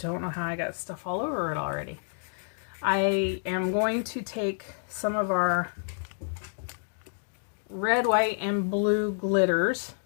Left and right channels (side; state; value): right; silent; digital silence